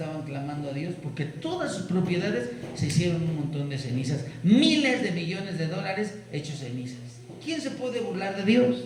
clamando a Dios porque todas sus propiedades se hicieron un montón de cenizas, miles de millones de dólares hechos cenizas. ¿Quién se puede burlar de Dios?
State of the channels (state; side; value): identical; both; correlation 1.00